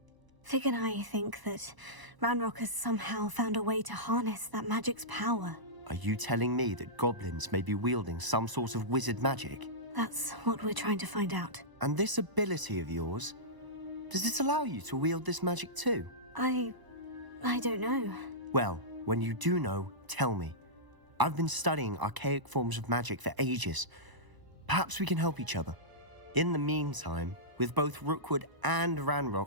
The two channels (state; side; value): late; left; 1.0 ms